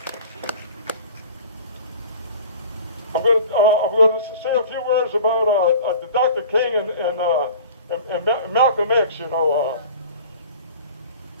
I'm going to say a few words about Dr. King and Malcolm X.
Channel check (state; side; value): inverted; both; correlation -0.42